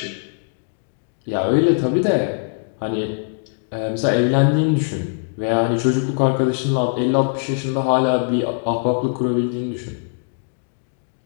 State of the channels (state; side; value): silent; right; digital silence